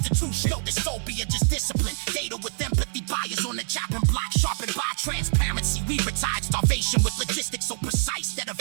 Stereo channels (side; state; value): left; silent; 61 dB below the other